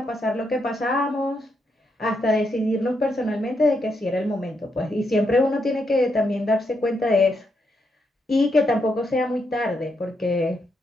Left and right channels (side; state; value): both; normal; correlation 0.80